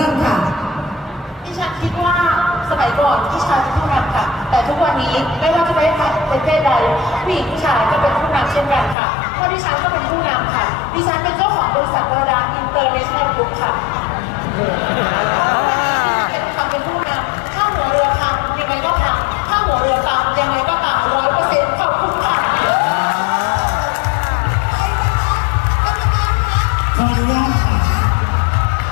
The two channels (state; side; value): drops out; right; at 9.0 s